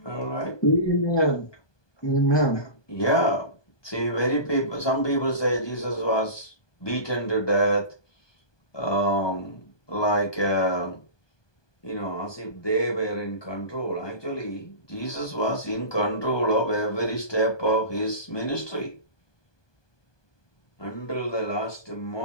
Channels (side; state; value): right; late; 1.2 ms